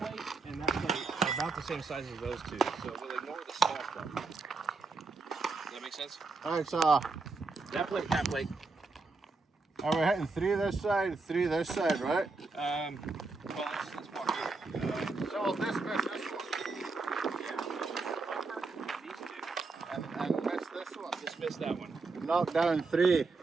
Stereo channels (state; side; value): quieter; left; 3.9 dB